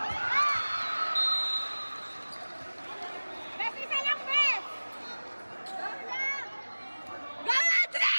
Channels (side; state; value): both; inverted; correlation -1.00